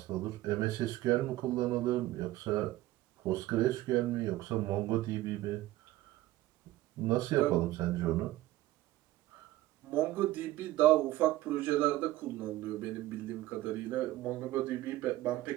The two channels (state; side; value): quieter; left; 16.2 dB